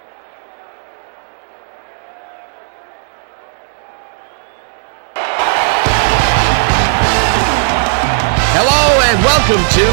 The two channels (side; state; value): left; silent; digital silence